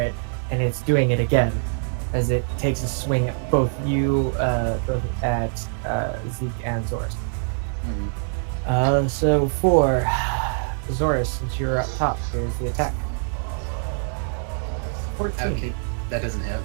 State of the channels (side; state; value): left; silent; 59 dB below the other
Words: and it's doing it again as it takes a swing at both you, both at Zeke and Zoris. So for Zoris, since you're up top, here's the attack. 14. Okay, that doesn't hit.